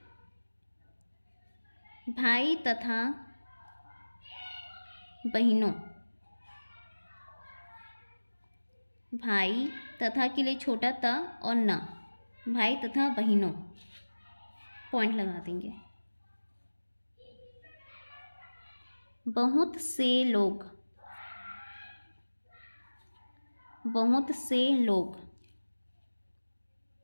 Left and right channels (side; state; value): both; inverted; correlation -1.00